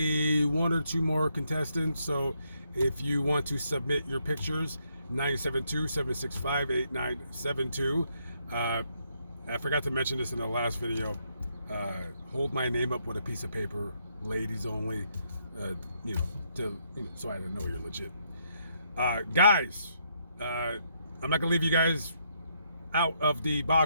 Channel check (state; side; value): inverted; both; correlation -0.75